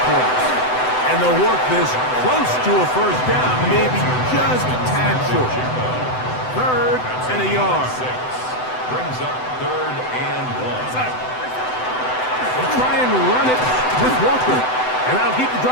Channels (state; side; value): late; right; 7.9 ms